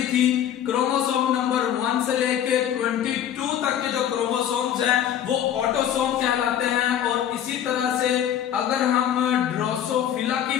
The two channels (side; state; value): right; quieter; 10.3 dB